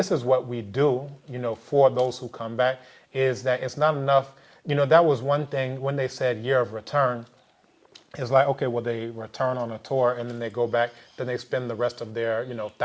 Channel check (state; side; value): identical; both; correlation 1.00